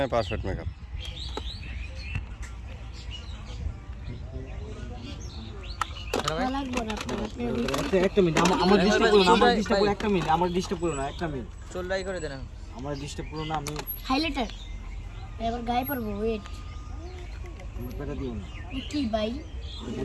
পারফেক্ট মেকআপ। লাগবে না একটা মিনিট আমার ডিস্টার্ব করো না, আমার ডিস্টার্ব করো একটা মিনিট, আমার ডিস্টার্ব করো না একটা মিনিট, চল্লাই করে দেন আমার ডিস্টার্ব করো না। আমি হাইলাইটার এবার গায়ে পারবো ওয়েট পেটা দিও না, কি ভাই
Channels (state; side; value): identical; both; correlation 1.00